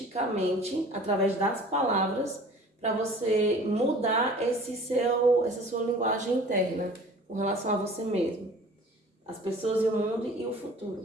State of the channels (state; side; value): normal; both; correlation 0.46